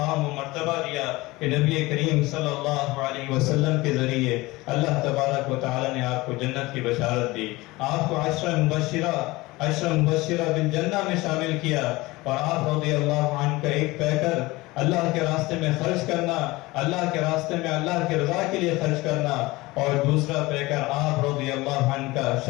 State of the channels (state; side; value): quieter; right; 21.0 dB